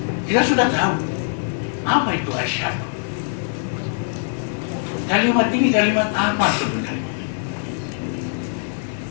Kita sudah tahu apa itu asyhadu. Kalimat ini kalimat apa sebenarnya?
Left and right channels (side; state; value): right; silent; digital silence